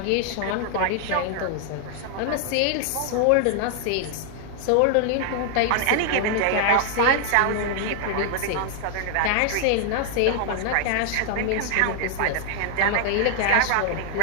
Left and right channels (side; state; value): both; different; correlation 0.00